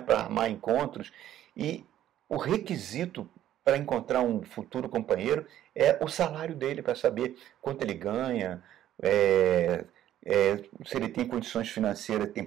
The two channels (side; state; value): left; quieter; 12.1 dB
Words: para armar encontros, e o requisito para encontrar um futuro companheiro é o salário dele, para saber quanto ele ganha, se ele tem condições financeiras, tem